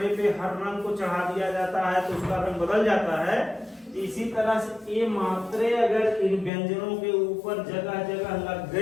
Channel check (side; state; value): right; drops out; at 6.5 s